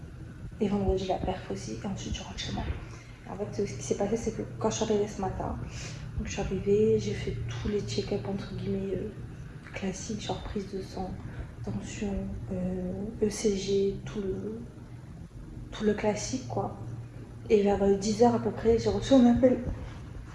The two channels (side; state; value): both; identical; correlation 1.00